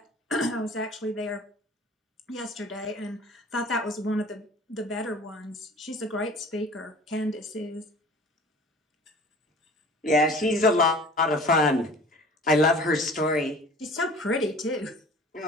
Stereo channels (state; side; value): normal; both; correlation 0.46